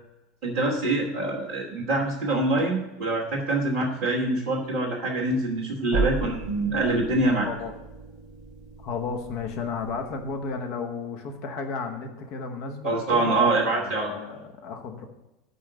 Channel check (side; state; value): both; normal; correlation 0.31